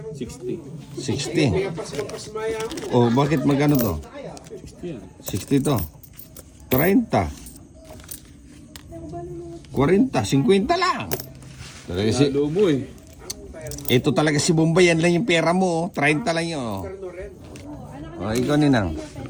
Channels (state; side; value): identical; both; correlation 1.00